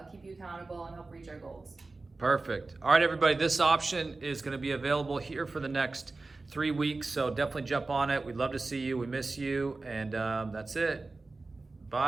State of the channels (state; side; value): quieter; left; 3.5 dB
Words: keep you accountable and help reach our goals. Perfect. All right, everybody, this option is going to be available here for the next 3 weeks, so definitely jump on it. We'd love to see you. We miss you, and that's it.